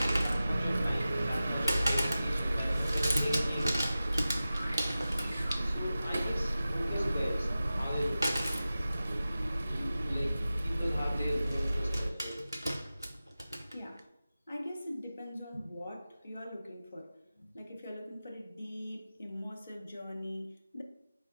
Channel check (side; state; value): both; inverted; correlation -0.95